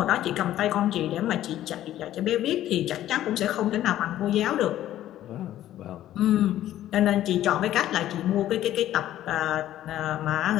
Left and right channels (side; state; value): right; quieter; 12.9 dB